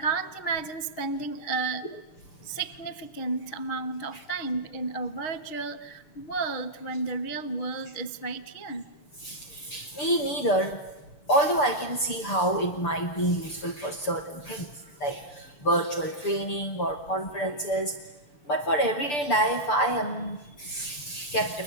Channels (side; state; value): right; late; 6.8 ms